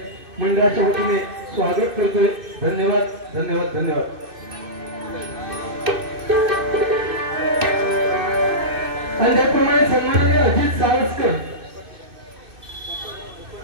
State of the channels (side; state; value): left; late; 2.6 ms